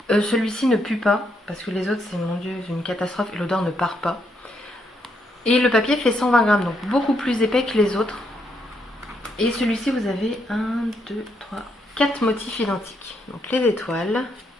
Celui-ci ne pue pas, parce que les autres, c'est, mon Dieu, une catastrophe, et l'odeur ne part pas. Et le papier fait 120 grammes, donc beaucoup plus épais que les autres. Et celui-ci, vous avez 1, 2, 3, 4 motifs identiques. Donc les étoiles,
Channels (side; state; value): both; normal; correlation 0.76